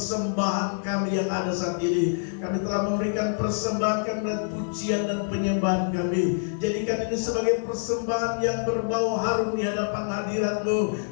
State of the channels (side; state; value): right; silent; 61 dB below the other